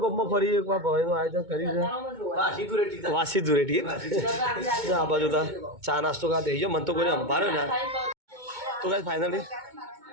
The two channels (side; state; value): left; late; 2.2 ms